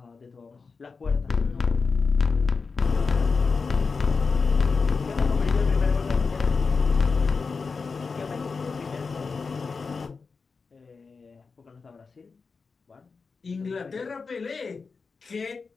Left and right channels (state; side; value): quieter; right; 4.7 dB